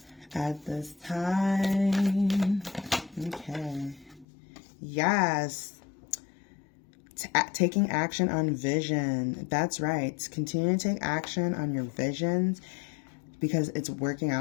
at this time. Okay. Yes. Taking action on vision. That's right. Continue to take action on your visions, because it's working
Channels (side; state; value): right; drops out; at 4.2 s